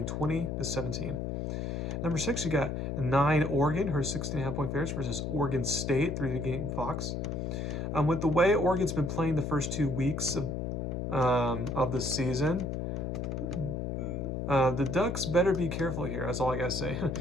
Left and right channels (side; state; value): left; noise; hum, 2 dB below the sound